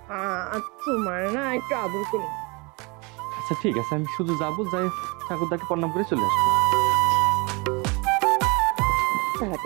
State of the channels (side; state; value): left; quieter; 28.6 dB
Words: তোমার না একটু আদর করি। আচ্ছা ঠিক আছে, আমি শুধু যাবো, যাই ঠাকুরদাকে প্রণাম করে চলে আসবো।